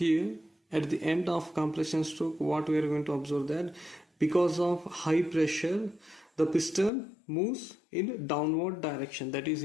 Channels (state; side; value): drops out; right; at 6.9 s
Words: at the end of compression stroke. What we are going to observe that because of high pressure the piston moves in downward direction. That is,